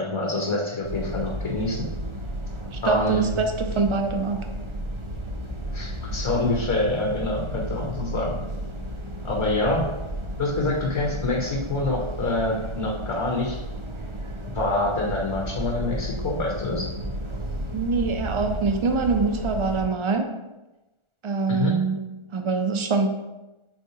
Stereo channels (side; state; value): left; late; 1.4 ms